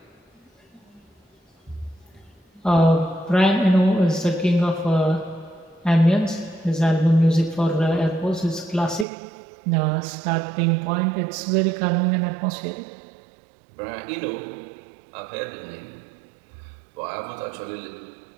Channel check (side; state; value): left; drops out; at 9.1 s